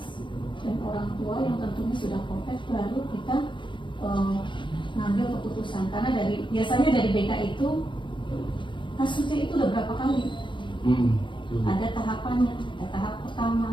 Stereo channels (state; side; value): late; right; 0.23 ms